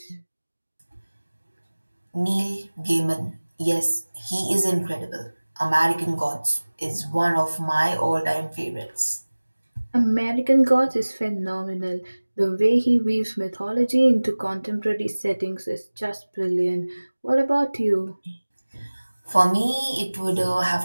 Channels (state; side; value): inverted; both; correlation -1.00